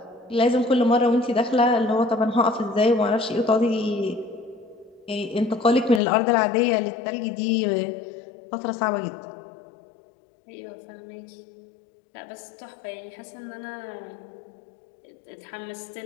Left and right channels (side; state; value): right; drops out; at 6.0 s